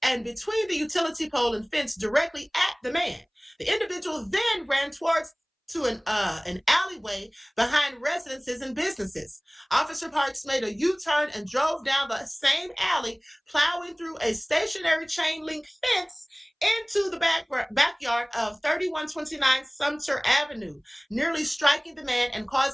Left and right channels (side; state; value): both; identical; correlation 1.00